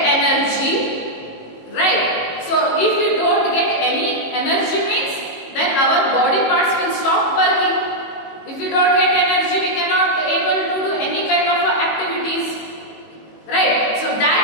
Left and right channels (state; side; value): late; right; 18 ms